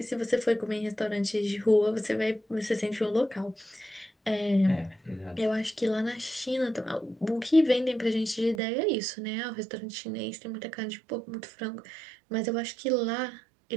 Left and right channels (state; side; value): drops out; left; at 8.6 s